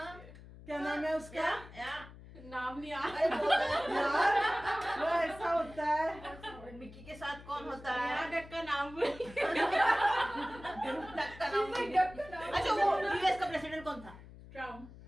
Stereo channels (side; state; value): left; noise; hum, 17 dB below the sound